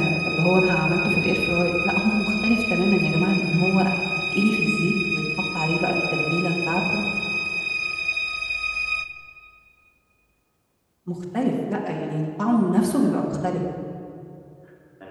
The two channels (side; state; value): both; identical; correlation 1.00